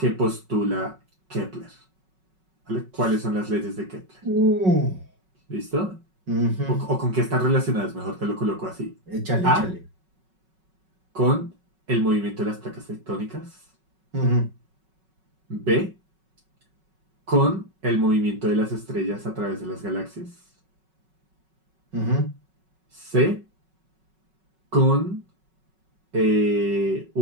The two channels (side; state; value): left; late; 5.4 ms